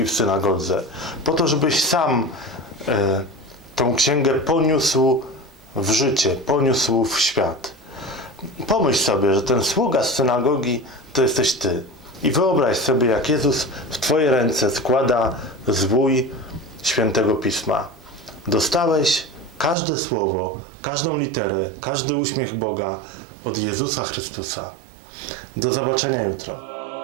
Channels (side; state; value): left; drops out; at 19.8 s